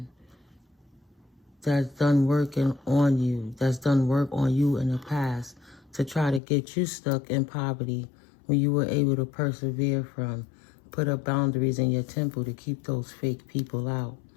that's done working on you, that's done work on you in the past to try to get you stuck in poverty when you were able to persevere from. Put up boundaries in your temple to keep those fake people out.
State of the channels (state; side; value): drops out; right; at 6.4 s